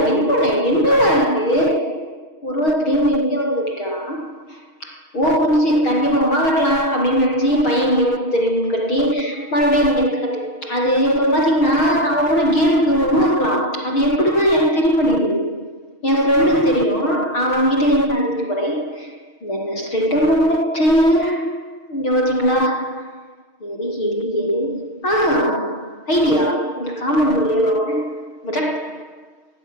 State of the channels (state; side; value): late; right; 6.4 ms